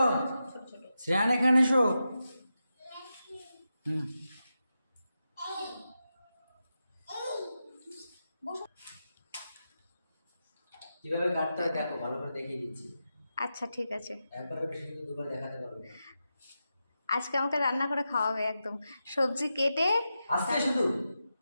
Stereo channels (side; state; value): both; inverted; correlation -0.89